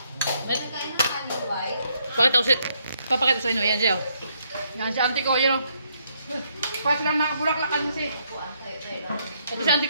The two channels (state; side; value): inverted; both; correlation -0.73